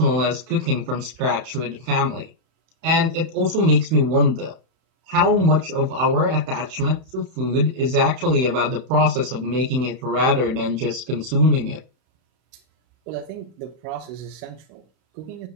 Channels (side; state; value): left; late; 31 ms